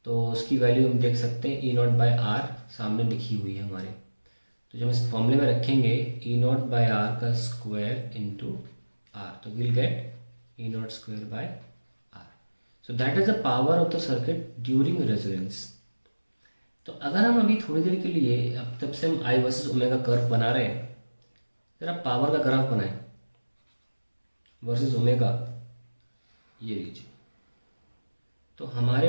तो उसकी वैल्यू हम देख सकते हैं ई नॉट बाय आर सामने लिखी हुई है हमारे, तो जब इस फॉर्मूले में रखेंगे ई नॉट बाय आर का स्क्वायर इंटू आर, तो will get E naught square by R. So that is the power of the circuit during resonance. तो अगर हम अभी थोड़ी देर के लिए, अब तब से हम आई वर्सेस ओमेगा कर्व बना रहे हैं, जरा पावर का ग्राफ बनाएं वर्सेस ओमेगा, ये लीजिए। तो हमारे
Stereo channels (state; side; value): inverted; both; correlation -1.00